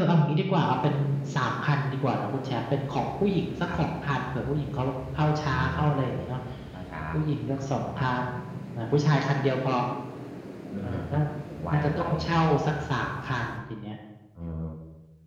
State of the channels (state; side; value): identical; both; correlation 1.00